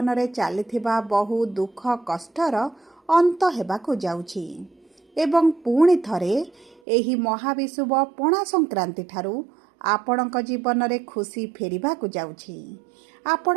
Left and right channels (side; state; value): left; drops out; at 6.8 s